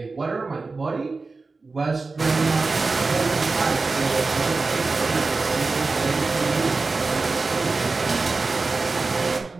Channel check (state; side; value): quieter; left; 3.9 dB